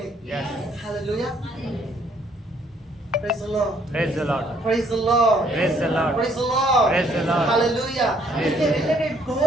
Yes. Hallelujah. Praise the Lord. Praise the Lord. Praise the Lord. Praise the Lord. Praise the Lord. Praise the Lord. Hallelujah. इसके रिलेटेड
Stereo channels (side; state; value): both; normal; correlation 0.65